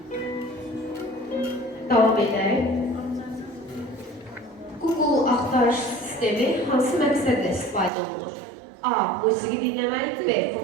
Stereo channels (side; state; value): left; drops out; at 7.9 s